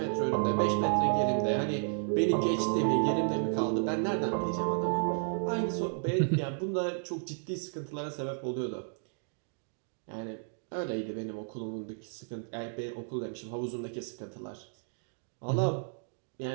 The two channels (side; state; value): left; silent; digital silence